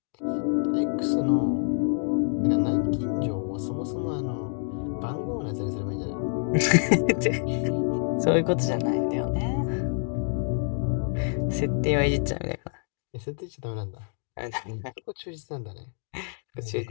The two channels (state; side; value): silent; right; 60 dB below the other